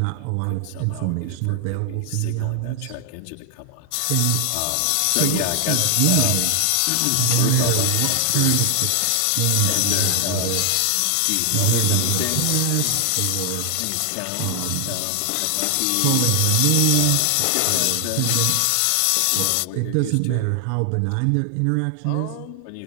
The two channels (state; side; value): different; both; correlation 0.00